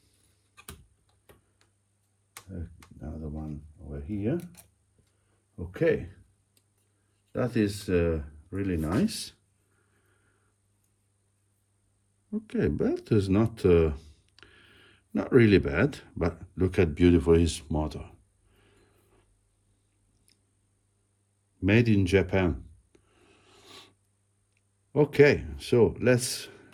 Another one over here. Okay, that is really nice. Okay, but it's not really bad. But look at beautiful his motor. Made in Japan. Okay, so let's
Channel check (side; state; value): both; identical; correlation 1.00